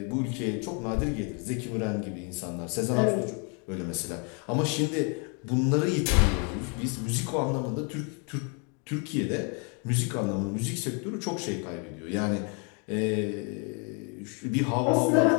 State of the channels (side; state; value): right; quieter; 36.5 dB